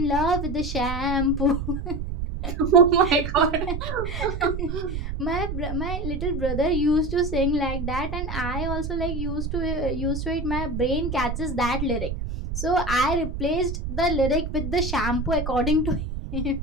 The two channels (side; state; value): right; noise; rumble, 4 dB below the sound